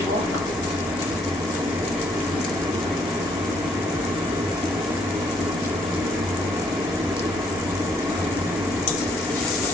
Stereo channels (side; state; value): both; normal; correlation 0.68